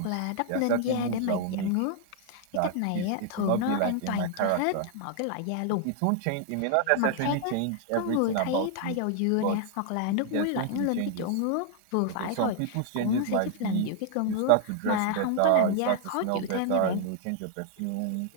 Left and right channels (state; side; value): different; both; correlation 0.00